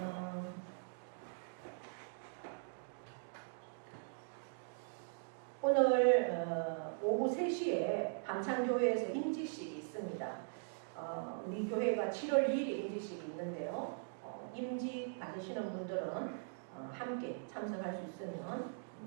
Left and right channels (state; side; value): silent; left; digital silence